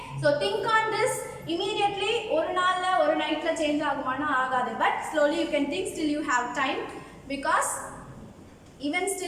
so think on this immediately. ஒரு நாள்ல ஒரு நைட்ல சேஞ்ச் ஆகுமானா ஆகாது, but slowly you can think till you have time, because even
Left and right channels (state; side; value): identical; both; correlation 1.00